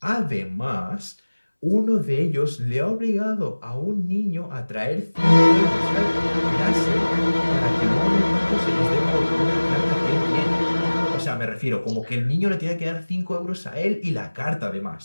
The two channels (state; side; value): inverted; both; correlation -1.00